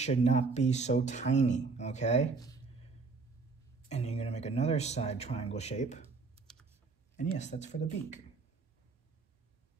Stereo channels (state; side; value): quieter; left; 4.4 dB